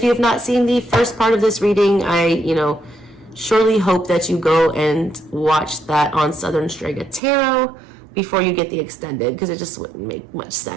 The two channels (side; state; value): left; drops out; at 7.2 s